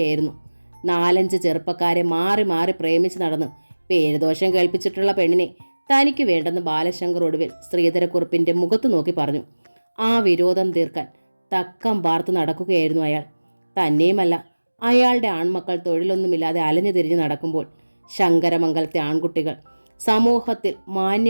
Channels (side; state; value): both; inverted; correlation -1.00